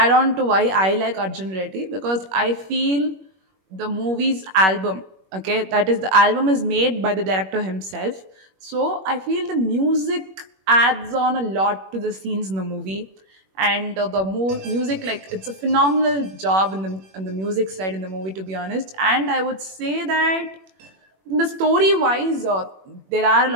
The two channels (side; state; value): left; late; 21 ms